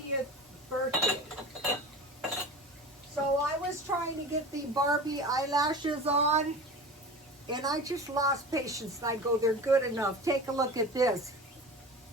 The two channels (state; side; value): normal; both; correlation 0.34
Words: birthday. So I was trying to get the Barbie eyelashes on, and I just lost patience. And I go, they're good enough. Take a look at this.